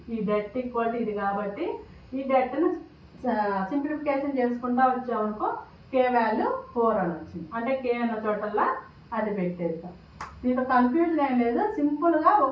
ఈ డెట్ ఈక్వల్ టు ఇది కాబట్టి ఈ డెట్ను సింప్లిఫికేషన్ చేసుకుంటా వచ్చామనుకో k వాల్యూ 4 అని వచ్చింది. అంటే k అన్న చోటల్లా అది పెట్టేస్తాం. దీంట్లో కన్ఫ్యూజన్ ఏం లేదు, సింపుల్గా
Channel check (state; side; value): identical; both; correlation 1.00